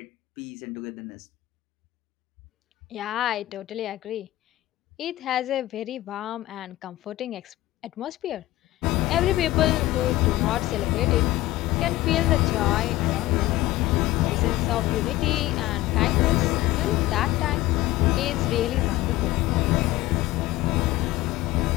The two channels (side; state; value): right; quieter; 16.8 dB